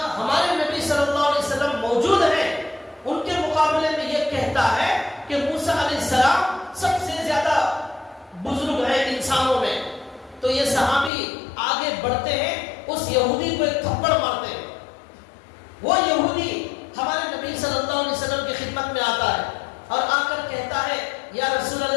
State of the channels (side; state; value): right; drops out; at 11.1 s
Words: ہمارے نبی صلی اللہ علیہ وسلم موجود ہیں, ان کے مقابلے میں یہ کہتا ہے کہ موسیٰ علیہ السلام سب سے زیادہ بزرگ ہیں انسانوں میں. تو یہ صحابی آگے بڑھتے ہیں, اس یہودی کو ایک تھپڑ مارتے ہیں. وہ یہودی ہمارے نبی صلی اللہ علیہ وسلم کی خدمت میں آتا ہے اور آ کر کہتا ہے یا رسول